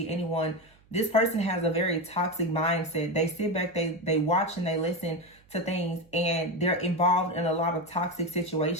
anyone. This person has a very toxic mindset. They sit back, they watch and they listen to things, and they're involved in a lot of toxic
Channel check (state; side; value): noise; right; hum, 30 dB below the sound